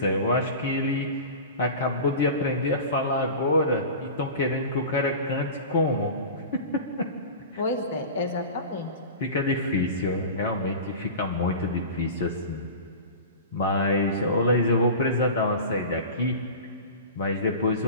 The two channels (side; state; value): both; inverted; correlation -0.33